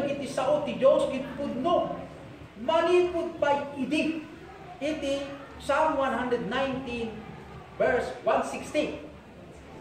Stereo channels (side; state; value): both; identical; correlation 1.00